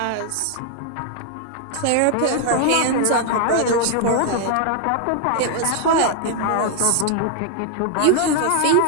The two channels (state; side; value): different; both; correlation 0.00